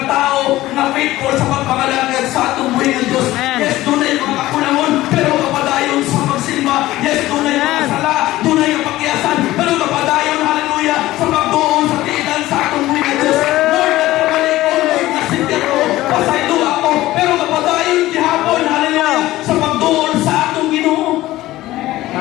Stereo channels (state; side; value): quieter; right; 16.5 dB